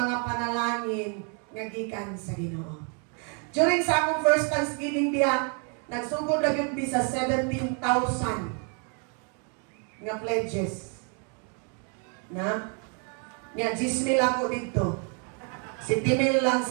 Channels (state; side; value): quieter; left; 39.3 dB